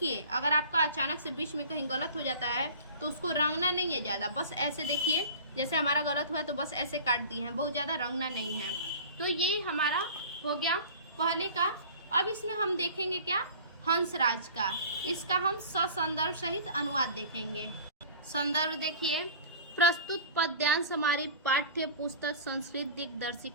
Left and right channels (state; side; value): inverted; both; correlation -0.40